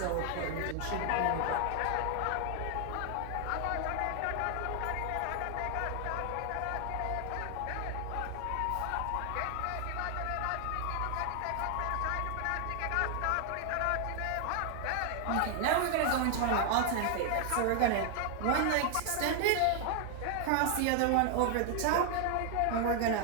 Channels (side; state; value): both; different; correlation 0.00